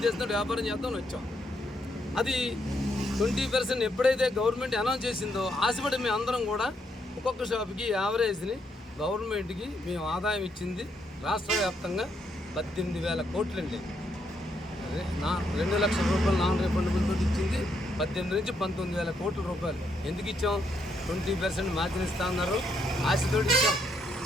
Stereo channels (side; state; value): both; normal; correlation 0.76